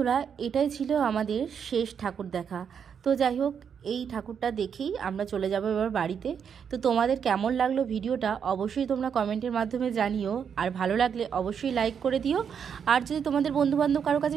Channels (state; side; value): quieter; left; 7.4 dB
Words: এটাই ছিল আমাদের শেষ ঠাকুর দেখা। তো যাই হোক, এই ঠাকুরটা দেখেই আমরা চলে যাব এবার বাড়িতে। তো তোমাদের কেমন লাগলো ভিডিওটা অবশ্যই তোমরা কমেন্টের মাধ্যমে জানিও। আর ভালো লাগলে অবশ্যই লাইক করে দিও। আর যদি তোমাদের বন্ধুবান্ধব কারো কাছে